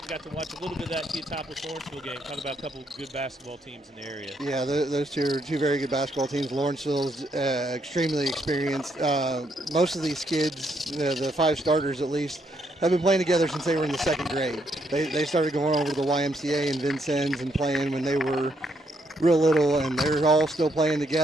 bit of that Teotopos-Lawrenceville game. Talk about a couple of good basketball teams in the area. Yeah, those two are 2 very good basketball teams. Lawrenceville's extremely experienced. Most of these kids, the 5 starters at least, have been playing together since they were in the 2nd grade. They started going over to the YMCA in Vincennes and playing when they were real little, and they're all still playing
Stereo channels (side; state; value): both; normal; correlation 0.75